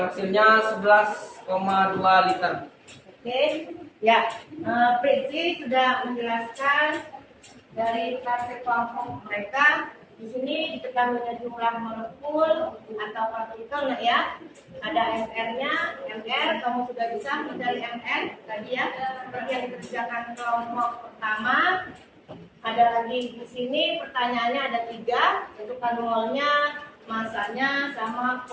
hasilnya 11,2 liter. Oke, ya, Pritzi sudah menjelaskan dari klasse kelompok mereka. Di sini diketahui jumlah molekul atau partikel, nah ya. Ada MR-nya, MR, kamu sudah bisa mencari MR tadi ya. Seperti yang dikerjakan kelompok pertama. Ada lagi di sini pertanyaannya ada 3, yaitu molnya, masanya, sama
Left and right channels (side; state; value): both; identical; correlation 1.00